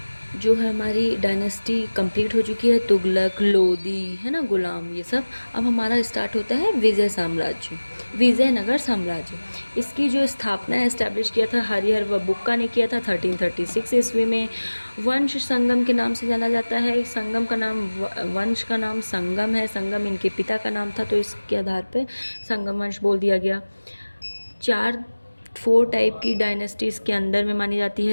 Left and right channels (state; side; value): inverted; both; correlation -1.00